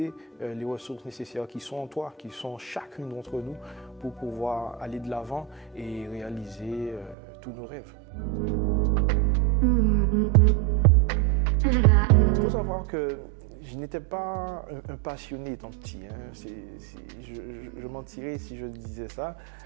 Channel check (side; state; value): left; drops out; at 7.2 s